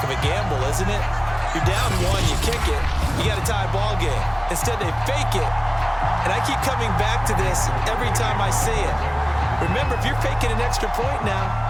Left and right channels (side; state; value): both; identical; correlation 1.00